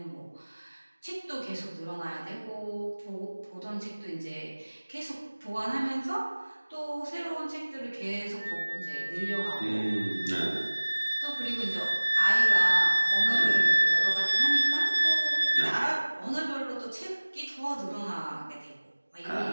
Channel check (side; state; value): both; inverted; correlation -1.00